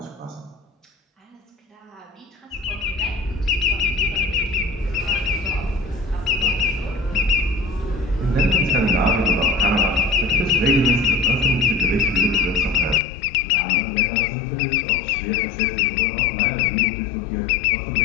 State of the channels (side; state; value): right; drops out; at 13.0 s